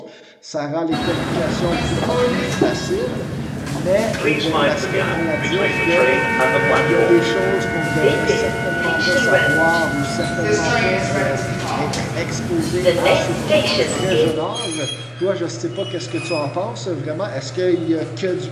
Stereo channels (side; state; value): both; identical; correlation 1.00